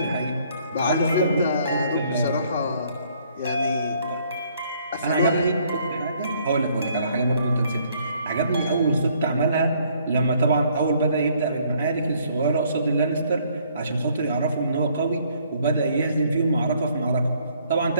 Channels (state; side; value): inverted; both; correlation -0.65